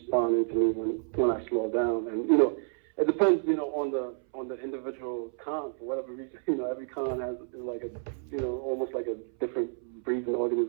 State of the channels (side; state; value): left; silent; 58 dB below the other